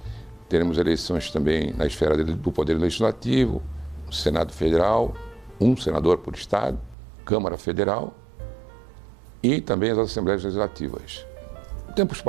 Teremos eleições também na esfera do Poder Legislativo, o Senado Federal, um senador por Estado, Câmara Federal e também as Assembleias Legislativas. Em tempos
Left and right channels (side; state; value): left; drops out; at 7.0 s